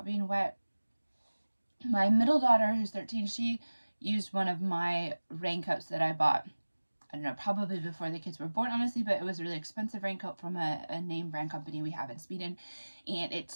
being wet. My middle daughter, who's 13, she used one of my raincoats that I bought, I don't know, probably before the kids were born, honestly, but it was a really expensive raincoat from a name brand company we have in Sweden, and it's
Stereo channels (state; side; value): inverted; both; correlation -1.00